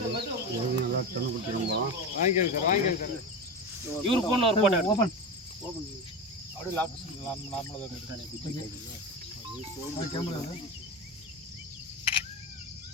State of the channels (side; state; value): both; normal; correlation 0.22